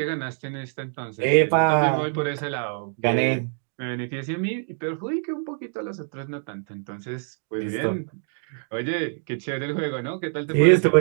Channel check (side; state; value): left; silent; digital silence